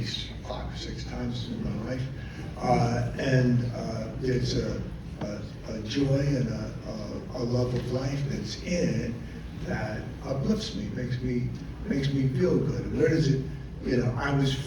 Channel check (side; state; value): both; identical; correlation 1.00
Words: 5 or 6 times in my life. And there's a joy and a love of life that's in it that uplifts me, makes me feel good. And where does it, you know, I was